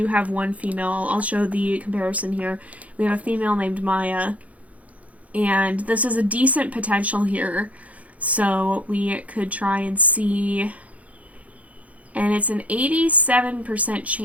have one female. I'll show the comparison here. We have a female named Maya. And this is a decent potential here. So we could try and see... And it's an 87%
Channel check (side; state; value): left; late; 0.068 ms